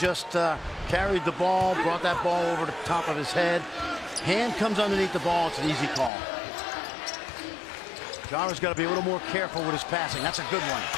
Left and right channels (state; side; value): drops out; right; at 6.1 s